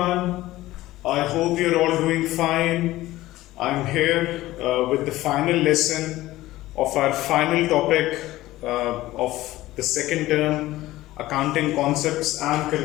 I hope you're all doing fine. I'm here with the final lesson of our final topic of the second term, accounting concepts and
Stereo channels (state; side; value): quieter; right; 16.7 dB